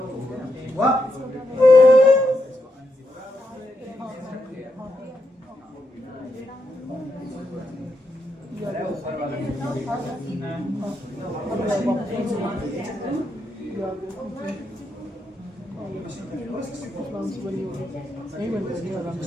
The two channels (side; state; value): both; normal; correlation 0.82